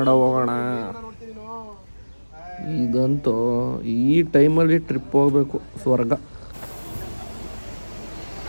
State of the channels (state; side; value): inverted; both; correlation -1.00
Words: ಹೋಗೋಣ. ಇದಂತೂ ಈ ಟೈಮಲ್ಲಿ ಟ್ರಿಪ್ ಹೋಗ್ಬೇಕು. ಸ್ವರ್ಗ.